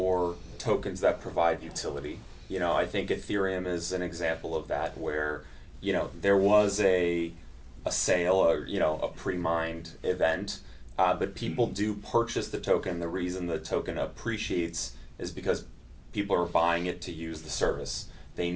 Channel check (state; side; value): identical; both; correlation 1.00